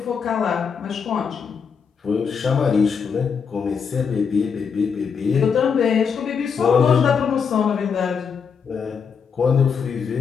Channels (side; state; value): right; quieter; 6.3 dB